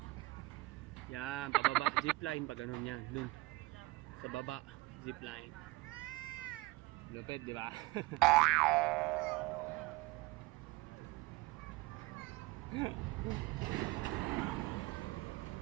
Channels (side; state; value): left; quieter; 22.2 dB